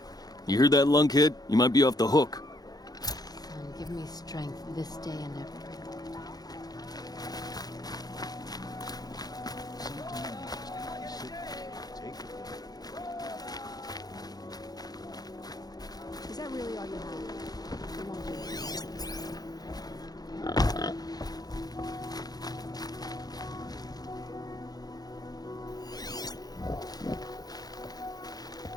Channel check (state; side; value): late; right; 0.19 ms